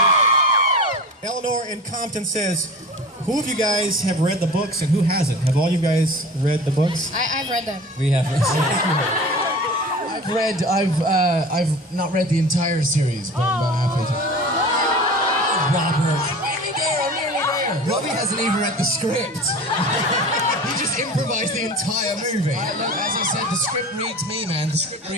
Eleanor in Compton says, who of you guys have read the books and who hasn't? Have all you guys read the books? I've read them. We have. I've not read the entire series, but I'm about halfway through. Robert. I'm nearly there. Robbie hasn't even read the script. He just improvised the entire movie. As I said, the script reads me, man. The script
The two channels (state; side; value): normal; both; correlation 0.36